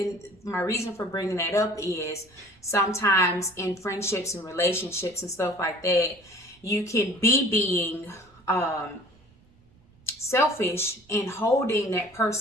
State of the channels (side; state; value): right; noise; rumble, 29 dB below the sound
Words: my reason for bringing that up is sometimes in friendships and relationships and stuff like that, you can be being selfish and holding that